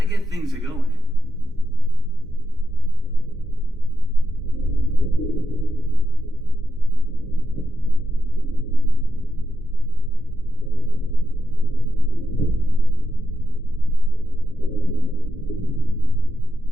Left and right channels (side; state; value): both; normal; correlation 0.85